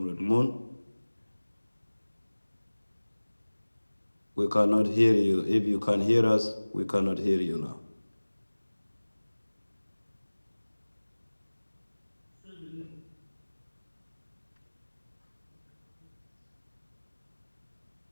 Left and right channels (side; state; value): both; inverted; correlation -1.00